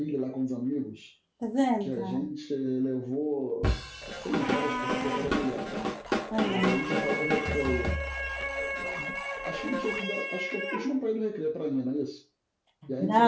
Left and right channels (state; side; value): identical; both; correlation 1.00